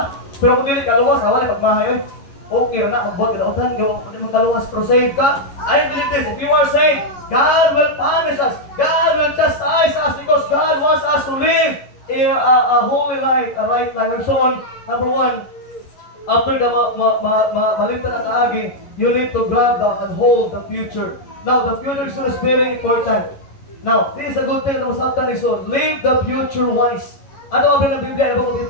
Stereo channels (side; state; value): right; late; 11 ms